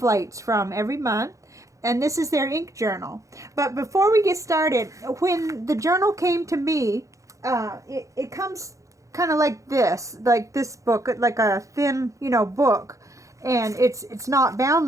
from every month. And this is their ink journal. But before we get started, when the journal came to me, it comes kind of like this book, like a thin, book. And it's not bound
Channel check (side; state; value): left; late; 0.15 ms